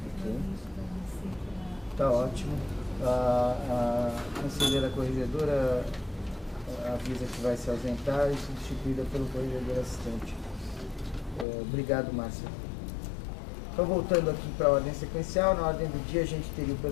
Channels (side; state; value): right; drops out; at 11.5 s